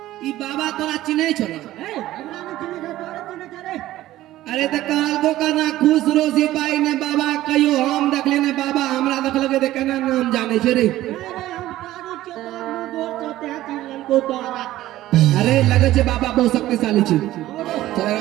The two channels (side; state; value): left; quieter; 15.1 dB